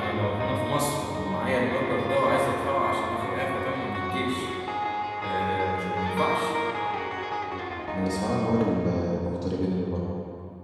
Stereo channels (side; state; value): both; identical; correlation 1.00